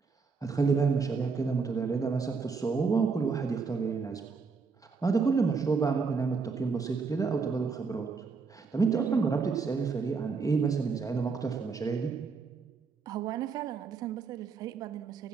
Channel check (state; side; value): quieter; left; 5.0 dB